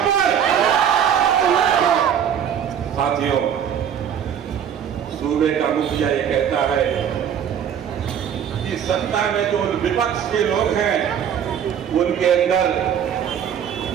साथियों, सूबे का मुखिया ये कहता है कि सत्ता में जो विपक्ष के लोग हैं उनके अंदर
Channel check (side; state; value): left; quieter; 8.7 dB